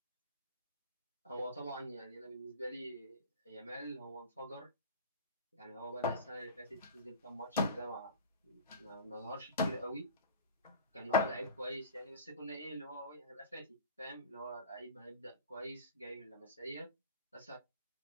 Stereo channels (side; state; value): both; inverted; correlation -0.37